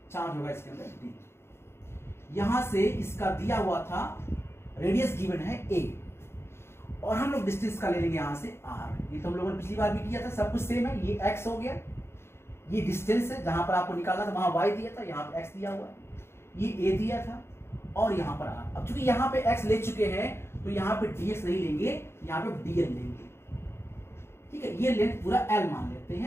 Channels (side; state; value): right; late; 0.12 ms